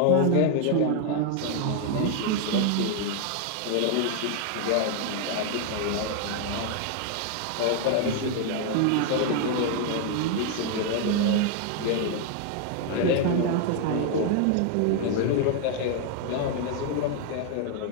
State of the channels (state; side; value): different; both; correlation 0.00